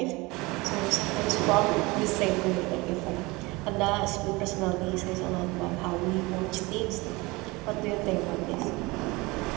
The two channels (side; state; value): left; quieter; 23.6 dB